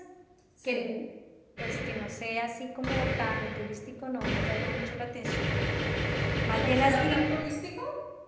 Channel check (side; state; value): both; identical; correlation 1.00